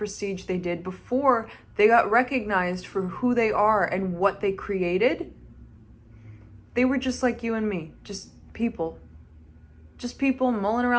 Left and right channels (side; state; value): both; identical; correlation 1.00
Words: they did, before they got recognized for who they are and what they created, they were just like you and me, just people mulling